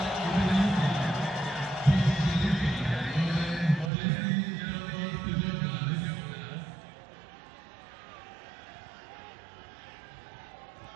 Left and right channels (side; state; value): left; drops out; at 3.9 s